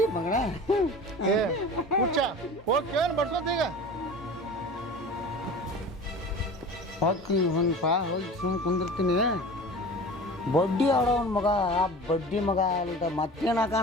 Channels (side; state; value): both; normal; correlation 0.37